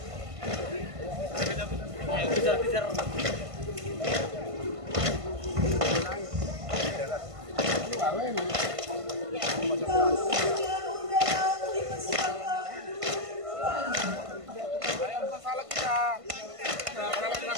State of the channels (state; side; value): late; left; 1.5 ms